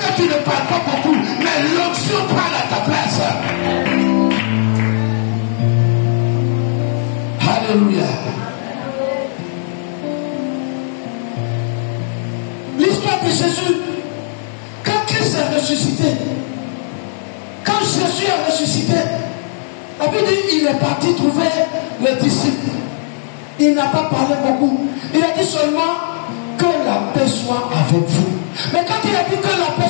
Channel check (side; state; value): right; silent; digital silence